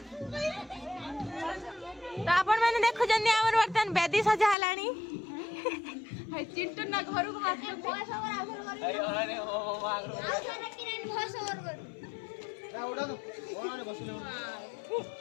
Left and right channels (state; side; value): drops out; right; at 4.5 s